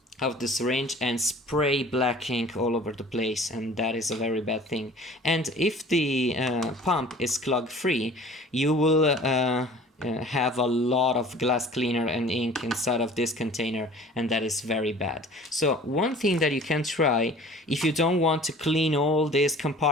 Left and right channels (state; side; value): normal; both; correlation 0.46